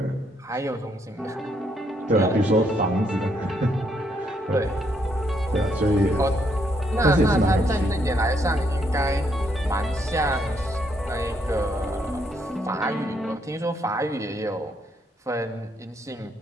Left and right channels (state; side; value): normal; both; correlation 0.74